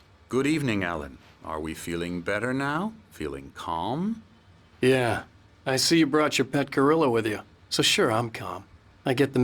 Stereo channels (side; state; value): both; identical; correlation 1.00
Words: Good evening, Alan. Are we feeling better now? Feeling calm? Yeah. I see you brought your pet gorilla with you. So sure, I'm calm. I get the